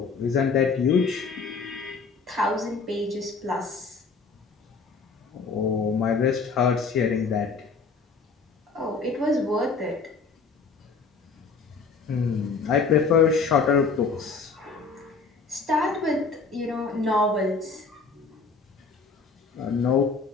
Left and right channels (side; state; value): right; quieter; 4.6 dB